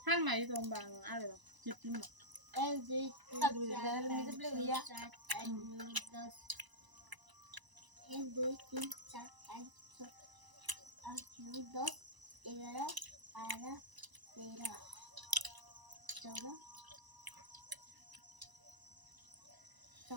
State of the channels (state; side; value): late; left; 1.0 ms